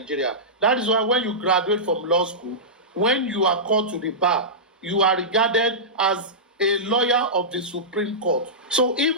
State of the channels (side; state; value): both; normal; correlation -0.15